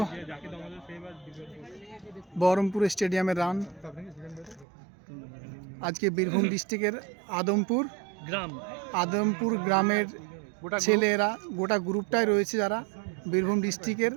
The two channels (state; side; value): drops out; left; at 4.7 s